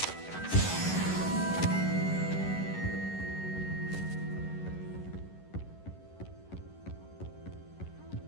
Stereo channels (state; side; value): late; right; 11 ms